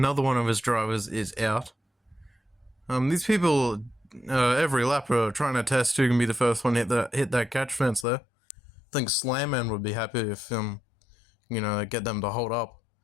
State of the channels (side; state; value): right; drops out; at 8.1 s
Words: one of his drivers is out. These people, every lap are trying to test who can be the first one to hit that catch fence there. I think Slanman would be happy if, get them to hold up.